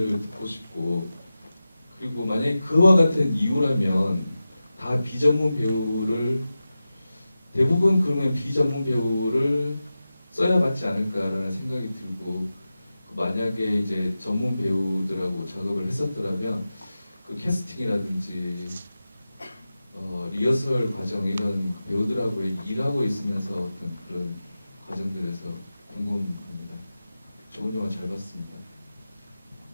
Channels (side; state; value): both; inverted; correlation -0.94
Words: 듣고 싶고, 그리고 만약에 그와 같은 이유라면 다 비전문 배우를 대부분 그러면 비전문 배우를 써야 맞지 않을까라는 생각이 들고, 만약에 이제 전문 배우들하고 작업을 했었더라면 그 캐스팅이라든지 리허설 과정 이런 배우들하고 일하고 있으면서 어떤 그런 과정들에서 궁금합니다. 좋은 영화 잘 봤습니다.